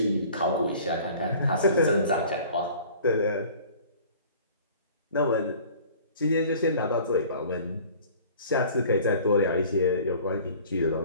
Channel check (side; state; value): both; inverted; correlation -0.47